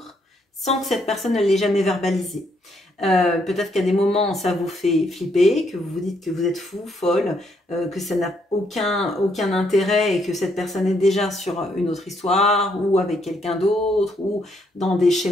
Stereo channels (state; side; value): normal; both; correlation 0.73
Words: sans que cette personne ne l'ait jamais verbalisé. Peut-être qu'à des moments ça vous fait flipper, que vous vous dites que vous êtes fou, folle, que ça n'a aucun intérêt et que cette personne est déjà sur une autre histoire ou avec quelqu'un d'autre ou dans des